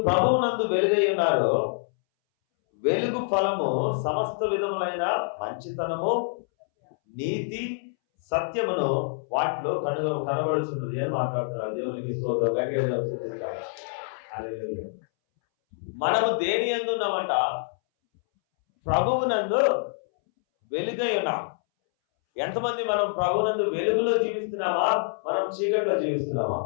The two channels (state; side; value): silent; right; 61 dB below the other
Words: ప్రభువునందు వెలుగై ఉన్నారు, వెలుగు ఫలము సమస్త విధములైన మంచితనము, నీతి, సత్యమును వాటిలో కనబడుచున్నది అని మాట్లాడుతున్నారు. దేవునికి స్తోత్రం. మనము దేని యందు ఉన్నామంట? ప్రభువునందు వెలుగై ఉన్నాం. ఎంతమంది మనం ప్రభువునందు వెలుగులో జీవిస్తున్నామా, మనం చీకటిలో జీవిస్తున్నామా?